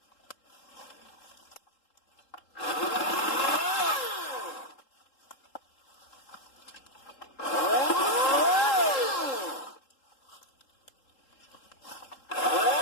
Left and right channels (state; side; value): late; right; 3.7 ms